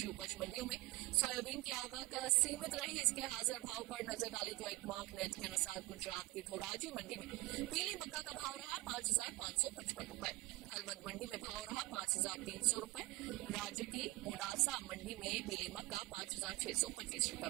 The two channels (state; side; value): quieter; left; 20.5 dB